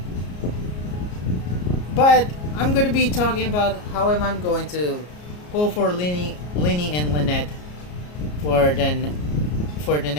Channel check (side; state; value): right; late; 33 ms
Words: But I'm going to be talking about how am I going to pull for Linny and Lynette for the